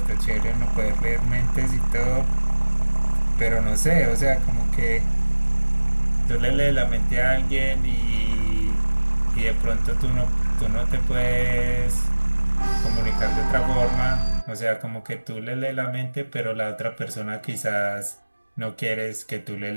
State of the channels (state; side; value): inverted; both; correlation -1.00